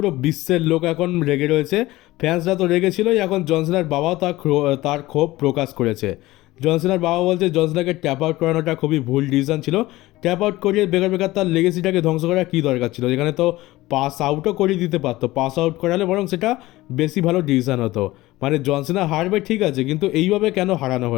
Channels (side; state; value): right; quieter; 18.1 dB